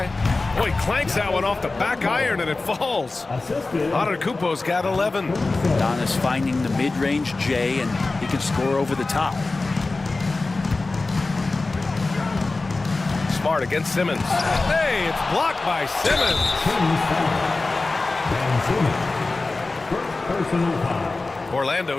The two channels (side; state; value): right; quieter; 3.5 dB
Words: Boy, clanks that one off the back iron and it falls. Antetokounmpo's got 11. Donis finding the mid-range J, and he can score over the top. Smart against Simmons. Hey, it's blocked by Simmons. First personal foul.